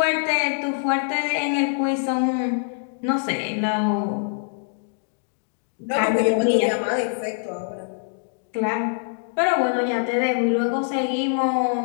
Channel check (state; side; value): silent; right; 63 dB below the other